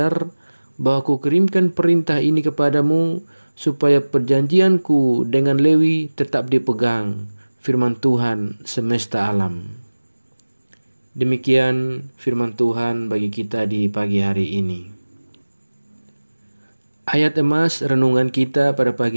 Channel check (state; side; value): inverted; both; correlation -1.00